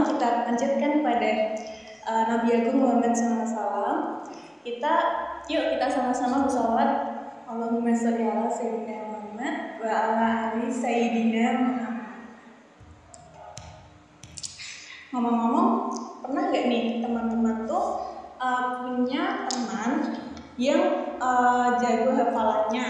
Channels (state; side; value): identical; both; correlation 1.00